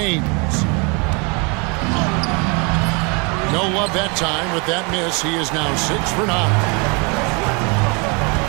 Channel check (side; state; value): left; quieter; 31.8 dB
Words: No love that time with that miss. He is now 6 for 9.